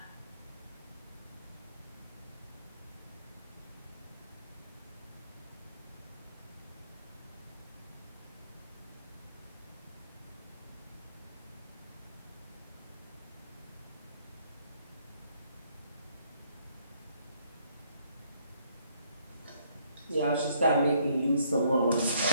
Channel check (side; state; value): both; inverted; correlation -0.68